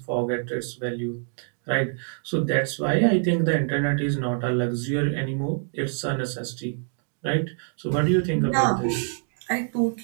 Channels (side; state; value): left; silent; 61 dB below the other